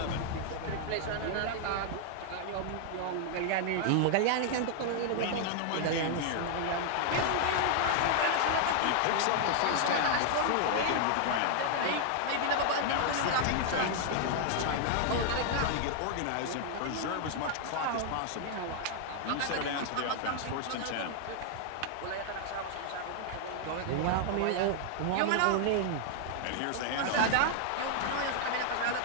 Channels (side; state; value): both; different; correlation 0.00